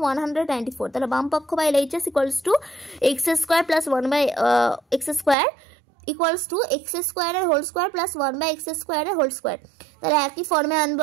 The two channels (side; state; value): left; drops out; at 5.4 s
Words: 194, তাহলে বাম পক্ষ বা LHS equals to x square plus 1/x square equals to x স্কোয়ারের হোল স্কোয়ার প্লাস 1/x স্কোয়ারের হোল স্কোয়ার। তাহলে একই ফর্মে আনবো